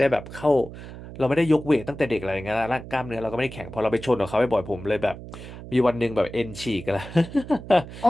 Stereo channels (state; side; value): noise; right; hum, 13 dB below the sound